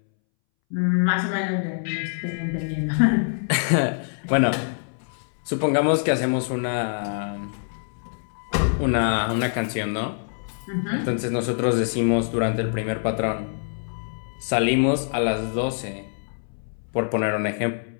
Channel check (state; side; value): silent; right; 62 dB below the other